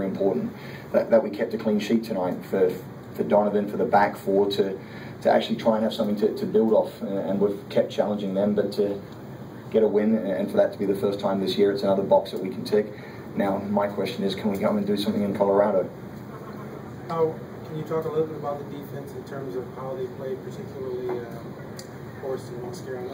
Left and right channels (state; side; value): identical; both; correlation 1.00